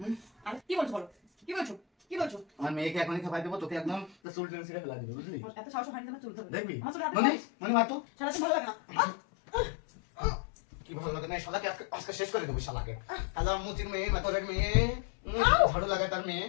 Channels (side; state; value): right; drops out; at 4.2 s